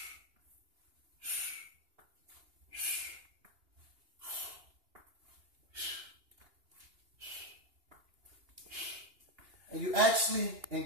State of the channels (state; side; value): late; left; 2.8 ms